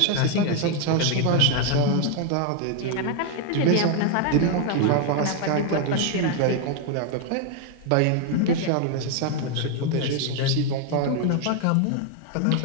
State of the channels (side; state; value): both; different; correlation 0.01